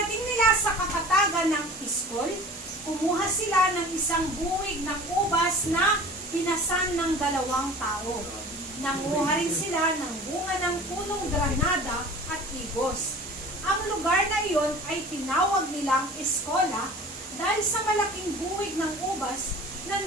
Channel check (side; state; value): both; normal; correlation 0.42